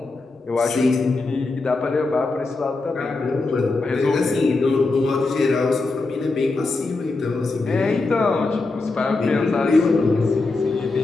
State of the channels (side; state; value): right; quieter; 3.5 dB